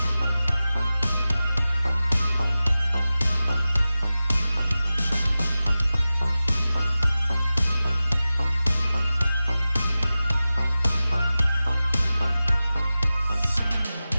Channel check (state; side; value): inverted; both; correlation -0.95